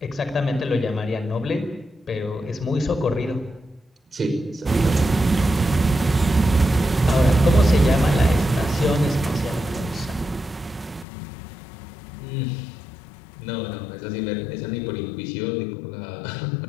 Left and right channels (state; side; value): drops out; right; at 11.1 s